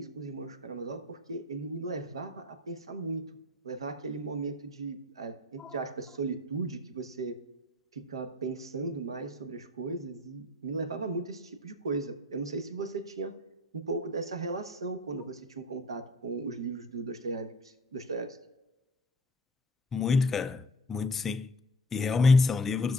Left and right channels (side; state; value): both; normal; correlation 0.44